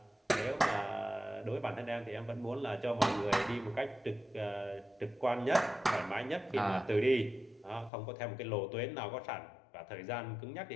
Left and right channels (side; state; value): right; drops out; at 7.9 s